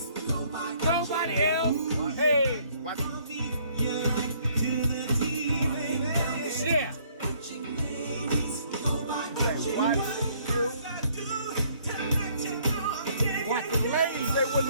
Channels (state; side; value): inverted; both; correlation -0.63